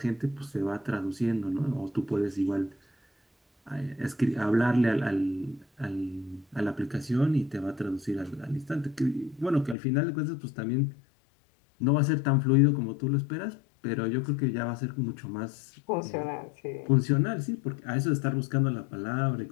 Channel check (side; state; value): right; drops out; at 9.8 s